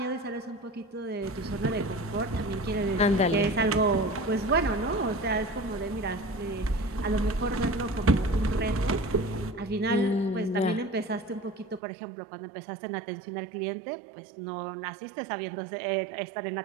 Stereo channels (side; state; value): left; drops out; at 11.8 s